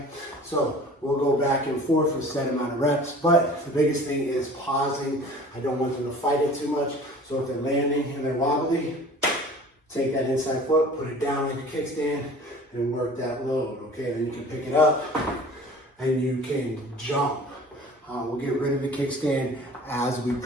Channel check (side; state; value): both; normal; correlation 0.45